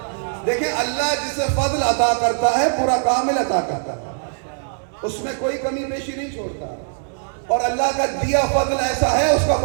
دیکھیں اللہ جسے فضل عطا کرتا ہے پورا کامل عطا کرتا ہے, اس میں کوئی کمی بیشی نہیں چھوڑتا, اور اللہ کا دیا فضل ایسا ہے اس کا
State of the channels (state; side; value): silent; left; 65 dB below the other